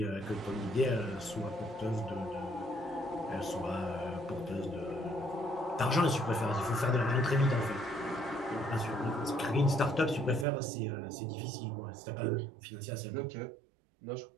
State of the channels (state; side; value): drops out; left; at 10.5 s